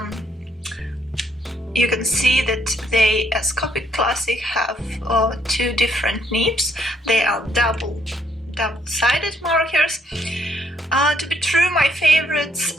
you can see that they, as Copic Classic, have 2 different nibs. They are double-sided markers. To be true, my favorites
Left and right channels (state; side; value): normal; both; correlation 0.71